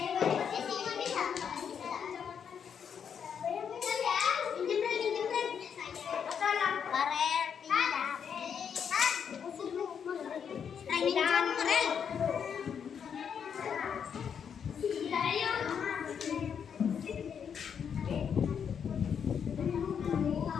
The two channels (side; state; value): right; quieter; 7.5 dB